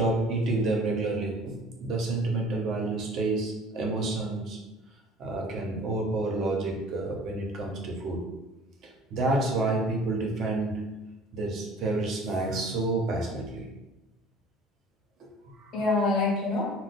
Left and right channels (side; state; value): both; normal; correlation 0.48